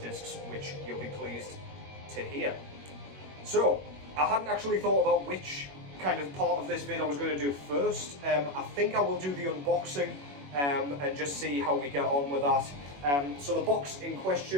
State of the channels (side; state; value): left; late; 21 ms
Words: which you'll be pleased to hear. So, I hadn't actually thought about which kind of part of this vid I was going to do first. I think I will do the unboxing and just see how we get on with that. So the box in